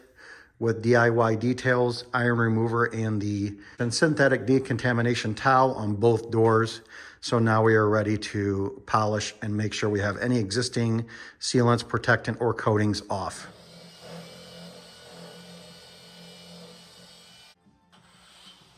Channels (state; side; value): identical; both; correlation 1.00